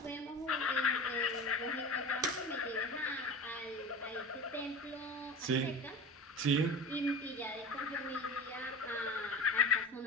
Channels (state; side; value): normal; both; correlation 0.32